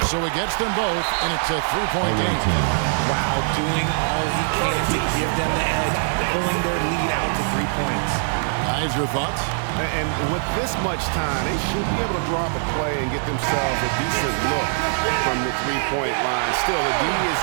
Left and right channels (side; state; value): left; silent; digital silence